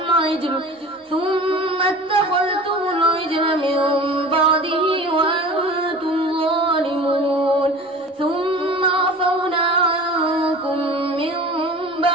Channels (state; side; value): normal; both; correlation 0.39